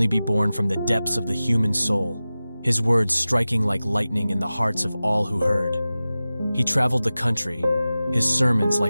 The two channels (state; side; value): inverted; both; correlation -0.96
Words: be born from the depths of the human soul, his words striking like lightning in the hearts of all who heard. He traveled the country, his sermons